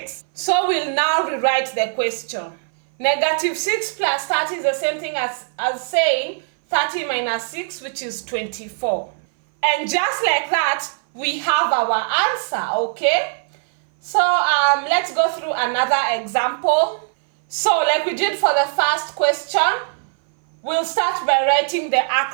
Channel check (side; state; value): left; silent; 60 dB below the other